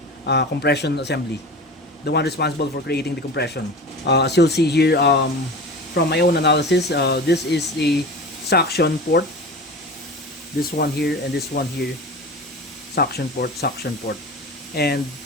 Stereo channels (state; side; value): normal; both; correlation 0.33